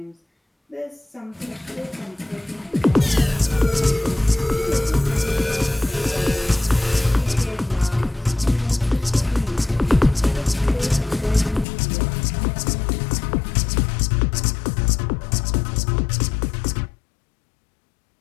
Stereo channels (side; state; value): right; drops out; at 11.7 s